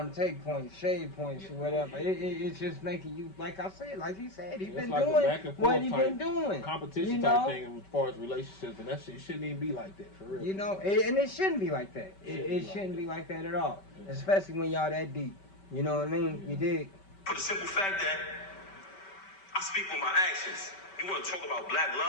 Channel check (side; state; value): right; late; 5.2 ms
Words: to take points, shade points, or whatever. It's just making you, like I said, like he said, he's been like doing what he been doing. Competition type thing as far as relationships, and that shit shouldn't even be like that, for real. You know, and it shouldn't be like that. It shouldn't be like that at all. Yeah. Especially when y'all that deep. You know what I mean? Yeah. You dig? For the simple fact that I speak with my actions. You want to talk about black